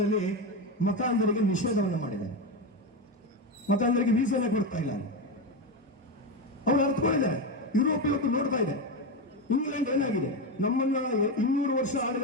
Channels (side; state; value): both; normal; correlation 0.14